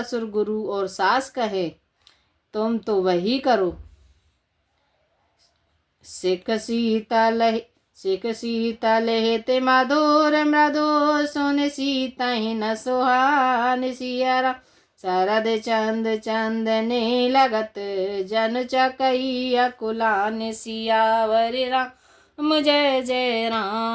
गुरु और सास कहे तुम तो वही करो। सिख शीतल हेते मधुर मृदु, सुन सीता ही न सुहान। सिया शरद चंद चंदने लगत, जन चकई अकुलान। सियावर राम जय जय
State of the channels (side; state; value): both; identical; correlation 1.00